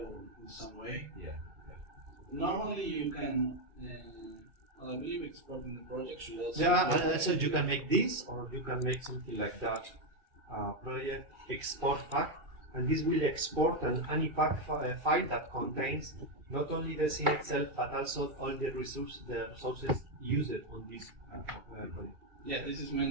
in some way. Yeah. Okay. Normally you can. I believe exporting the project should also. Yeah, so you can make this, or you can make something like that. Project export pack, and this will export an ANIPAC file that contains not only the scene itself, but also all the resources used on this project. Yeah, this is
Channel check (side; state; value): left; late; 2.4 ms